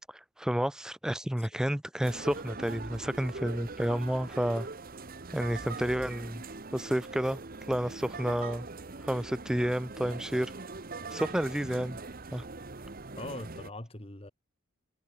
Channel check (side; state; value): both; normal; correlation 0.92